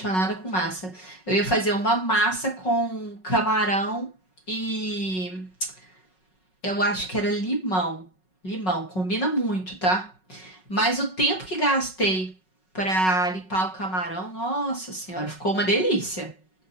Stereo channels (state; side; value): late; right; 5.4 ms